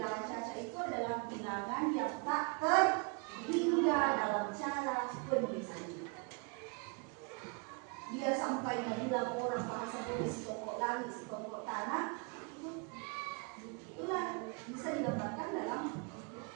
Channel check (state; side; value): quieter; left; 33.4 dB